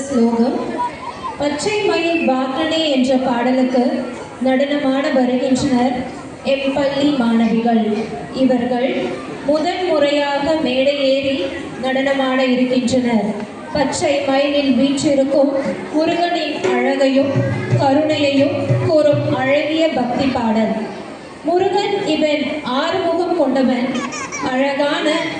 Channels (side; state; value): both; identical; correlation 1.00